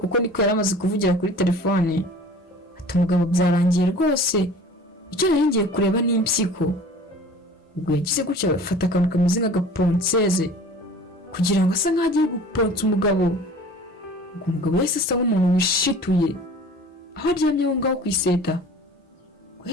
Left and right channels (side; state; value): both; normal; correlation 0.44